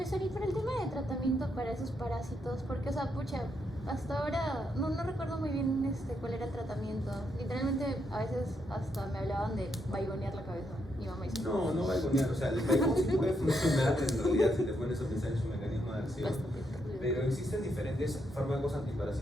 y para el tema de tratamiento para esos parásitos, porque, o sea, pucha, hasta ahora no recuerdo muy bien cuál era el tratamiento. Literalmente, a veces hasta me hablaban de vaigonear la cabeza. Mi mamá dice: No vaigonear, o sea, el vaigón sí puede funcionar en realidad si te pones a pensar en su mecanismo de acción. Pero existen diferentes fármacos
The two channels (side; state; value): both; normal; correlation 0.79